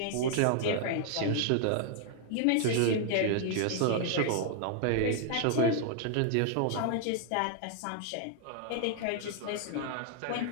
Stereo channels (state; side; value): different; both; correlation -0.01